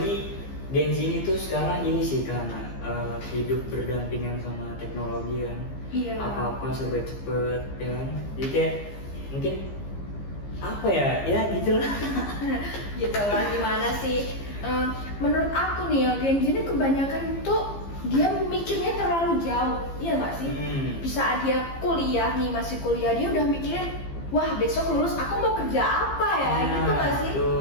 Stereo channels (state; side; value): late; right; 15 ms